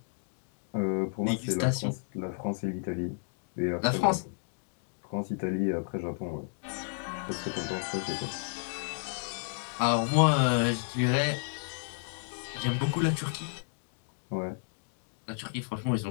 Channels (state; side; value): silent; right; digital silence